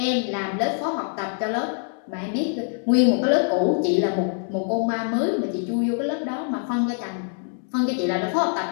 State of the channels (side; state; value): right; silent; digital silence